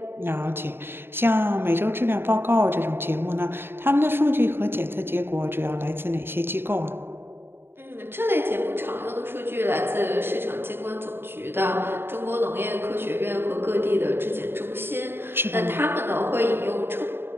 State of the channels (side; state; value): left; late; 0.11 ms